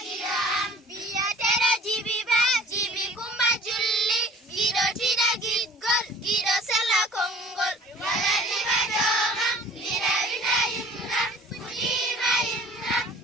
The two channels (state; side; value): normal; both; correlation 0.49